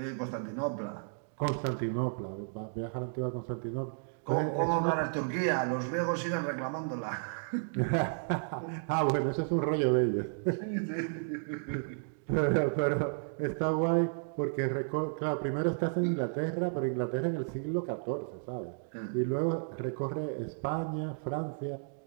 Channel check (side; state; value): left; silent; digital silence